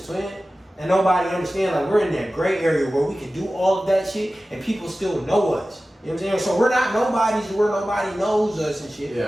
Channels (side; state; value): both; normal; correlation 0.96